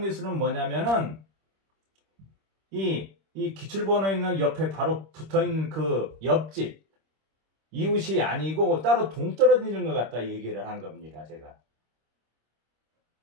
뭐냐면은 이 기출번호 있는 옆에 바로 붙어있는 그 옆집 이웃이 아니고 따로 동떨어지는 것 같다 얘기를 한 겁니다. 제가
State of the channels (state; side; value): late; left; 26 ms